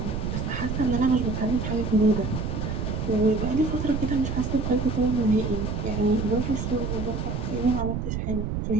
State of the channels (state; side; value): noise; right; rumble, 2 dB below the sound